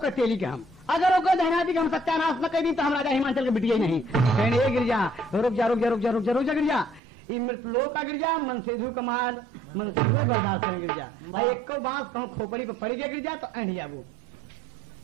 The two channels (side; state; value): left; drops out; at 7.0 s